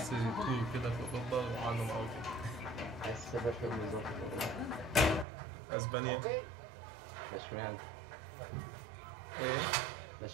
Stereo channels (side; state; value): left; drops out; at 5.2 s